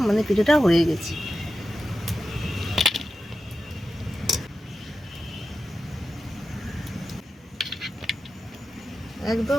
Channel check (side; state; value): both; normal; correlation 0.91